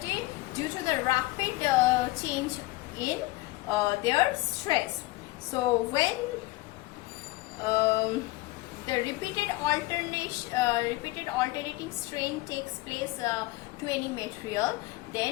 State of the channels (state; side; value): quieter; right; 20.3 dB